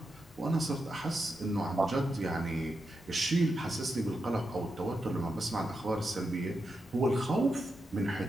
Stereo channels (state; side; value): normal; both; correlation 0.87